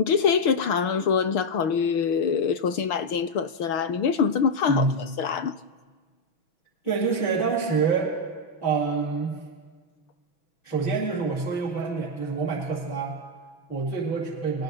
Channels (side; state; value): right; late; 6.8 ms